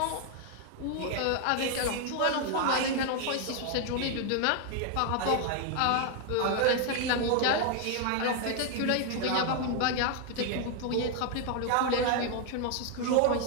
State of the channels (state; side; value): different; both; correlation 0.00